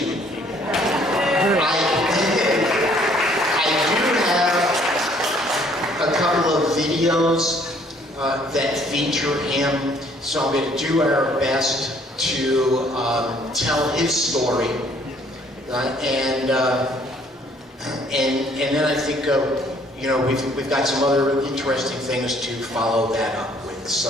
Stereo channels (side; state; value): both; normal; correlation 0.61